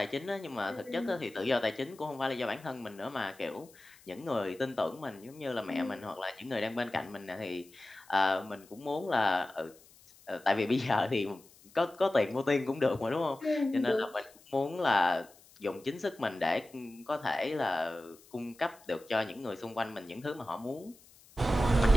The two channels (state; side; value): noise; left; hiss, 25 dB below the sound